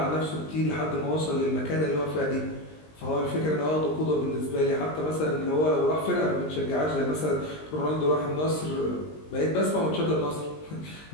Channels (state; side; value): late; right; 20 ms